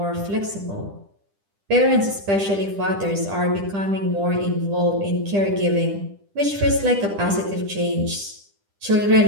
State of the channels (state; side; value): late; left; 10 ms